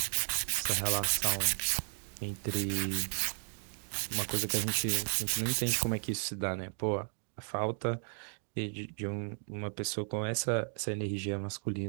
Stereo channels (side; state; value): left; silent; 55 dB below the other